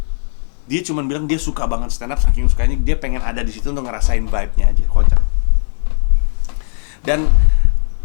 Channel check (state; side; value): silent; right; digital silence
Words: Dia cuma bilang dia suka banget stand up, saking sukanya dia pengen ada di situ untuk ngerasain vibe-nya aja, kocak. Dan